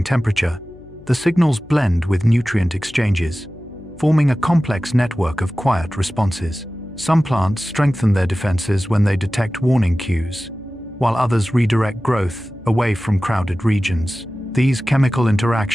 temperature, the signals blend with nutrient exchanges, forming a complex network of quiet responses. Some plants strengthen their defenses when they detect warning cues, while others redirect growth away from crowded regions. These chemical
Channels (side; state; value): left; noise; hum, 22 dB below the sound